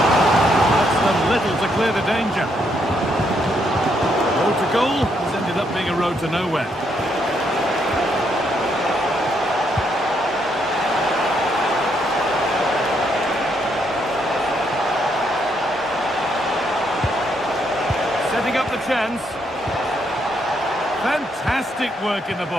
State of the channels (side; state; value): both; normal; correlation 0.75